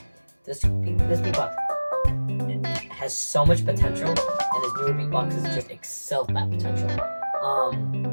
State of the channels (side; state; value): both; inverted; correlation -1.00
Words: This beatbox has so much potential, and his newer beatboxes just excel that potential.